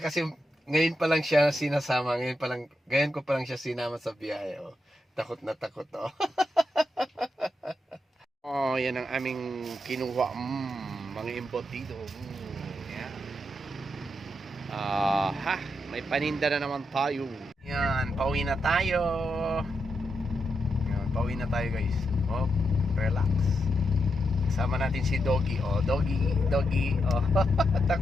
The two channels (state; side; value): normal; both; correlation 0.84